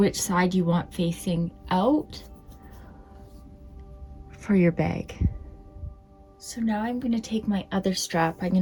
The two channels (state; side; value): identical; both; correlation 1.00